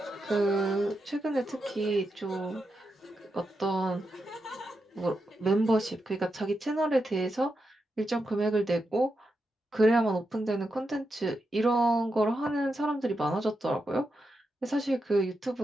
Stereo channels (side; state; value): both; normal; correlation 0.86